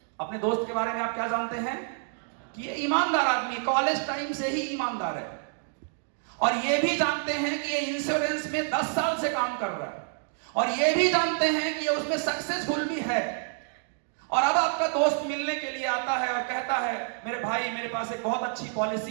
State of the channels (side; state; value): left; silent; 59 dB below the other